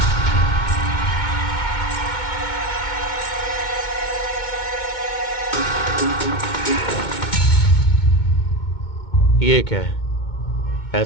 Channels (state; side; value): late; right; 2.2 ms